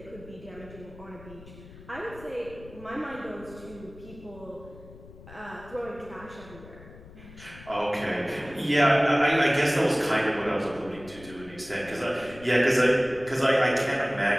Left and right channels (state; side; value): noise; left; rumble, 19 dB below the sound